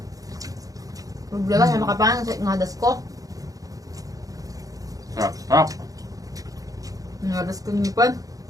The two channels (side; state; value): left; late; 0.17 ms